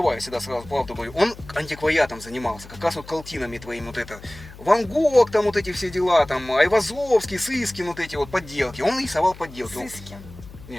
всегда сразу правду говорю. Он антиквариатом занимался, как раз вот картинами твоими вот это. Ван Гог, там вот эти все дела, там Айвазовский, Сыскин, вот эти вот подделки. Он рисовал подделки. Он- Сыскин.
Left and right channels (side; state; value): left; noise; hum, 18 dB below the sound